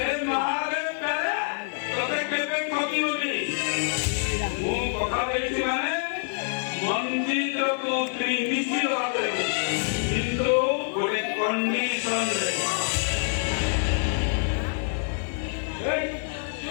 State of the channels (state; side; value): silent; right; digital silence